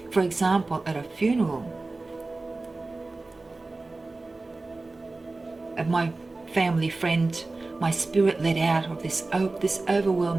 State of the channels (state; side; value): quieter; left; 3.3 dB